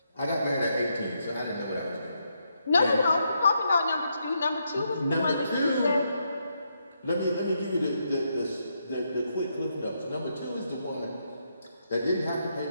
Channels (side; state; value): both; inverted; correlation -0.79